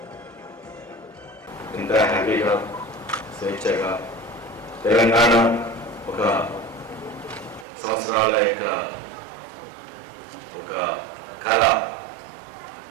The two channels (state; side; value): drops out; left; at 7.7 s